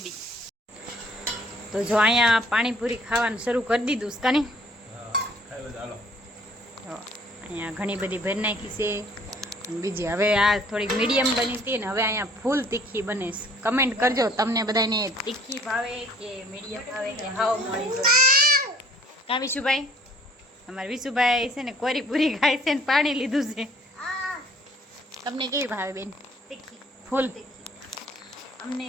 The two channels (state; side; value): normal; both; correlation 0.57